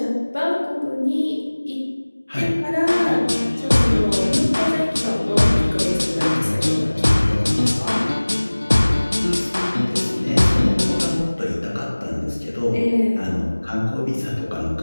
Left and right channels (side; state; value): both; inverted; correlation -1.00